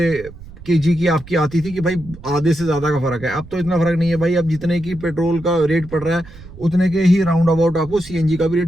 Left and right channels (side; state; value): right; noise; rumble, 18 dB below the sound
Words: केजी की आपकी आती थी कि भाई आधे से ज़्यादा का फ़र्क है। अब तो इतना फ़र्क नहीं है भाई, अब जितने की पेट्रोल का रेट पड़ रहा है उतने के ही राउंड अबाउट आपको सीएनजी का भी